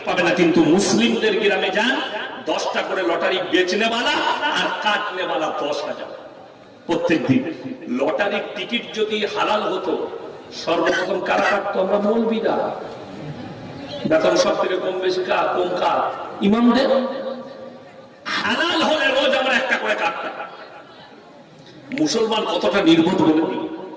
পাবেন না, কিন্তু মুসলিমদের গ্রামে যান 10টা করে লটারি বেচনেওয়ালা আর কাটনেওয়ালা 10,000 প্রত্যেকদিন। লটারির টিকিট যদি হালাল হতো, সর্বপ্রথম কারা কাটতো? আমরা মৌলবীরা। বেতন সব থেকে কম বেশি কম কার? ইমামদের। হালাল হলে রোজ আমরা একটা করে কাটতাম। মুসলমান কতটা নির্বোধ বলে দিই।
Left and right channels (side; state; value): both; identical; correlation 1.00